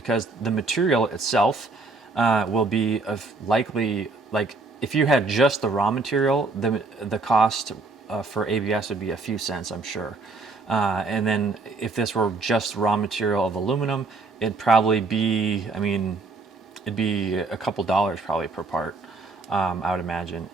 the material itself will be likely, like, if you had just the raw material, the cost for ABS would be a few cents, I'm sure. And then if this were just raw material of aluminum, it'd probably be, I mean, it'd be a couple dollars probably per part, I would imagine.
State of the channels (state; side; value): quieter; left; 3.6 dB